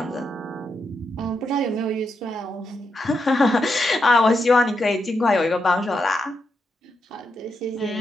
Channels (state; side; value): normal; both; correlation 0.83